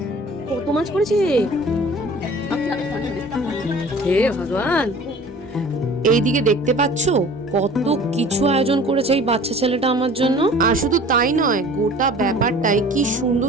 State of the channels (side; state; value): both; normal; correlation 0.46